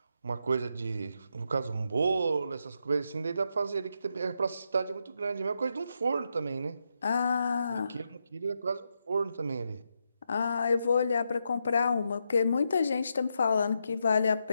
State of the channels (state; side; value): inverted; both; correlation -0.83